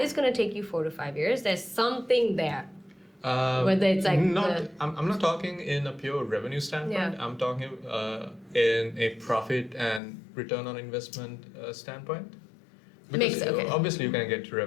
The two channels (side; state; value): right; drops out; at 10.0 s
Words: is going to take you 4 to 5 years, there's something there. Whether it's like I'm not talking in a pure revenue standpoint. I'm talking in a profit and return on investment standpoint. Because obviously you can get to